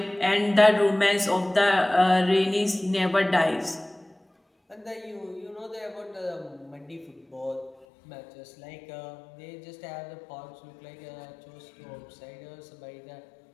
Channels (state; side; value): drops out; right; at 7.9 s